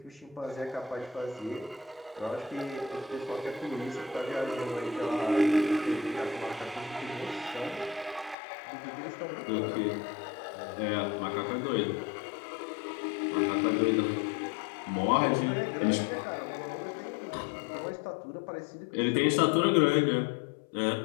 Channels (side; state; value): right; drops out; at 8.3 s